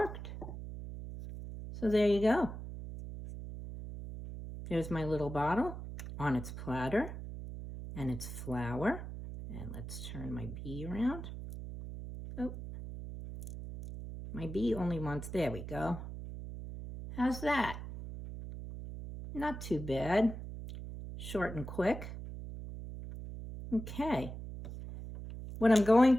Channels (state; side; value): noise; right; hum, 9 dB below the sound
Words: So there you go. There's my little bottle on its platter and its flower. And let's turn my bee around. Oh, my bee only wants, there we go. How's that? Not too bad. Short and quick. Okay. What I'm going